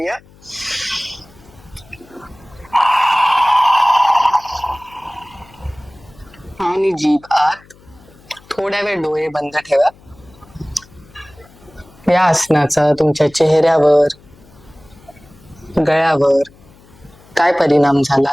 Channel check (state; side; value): noise; left; hum, 26 dB below the sound